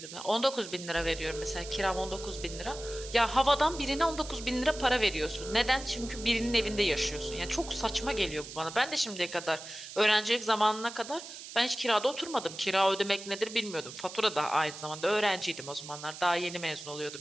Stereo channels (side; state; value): right; noise; hiss, 12 dB below the sound